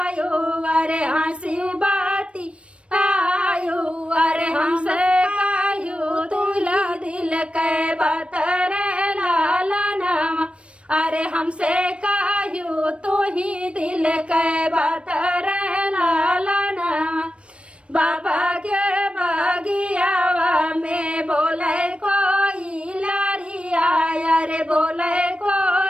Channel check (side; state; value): left; late; 0.060 ms